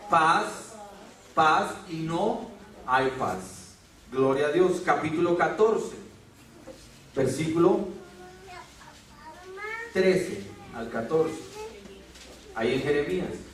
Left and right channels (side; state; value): both; identical; correlation 1.00